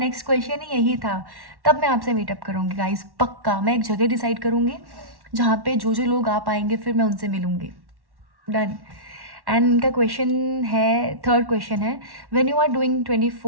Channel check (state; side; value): late; left; 1.1 ms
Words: क्वेश्चन ही यही था। तब मैं आपसे मीटअप करूँगी गाइस, पक्का। मैं एक जगह डिसाइड करूँगी जहाँ पे जो जो लोग आ पाएंगे फिर मैं उनसे मिलूँगी। डन। एंड इनका क्वेश्चन है, थर्ड क्वेश्चन है, when you are doing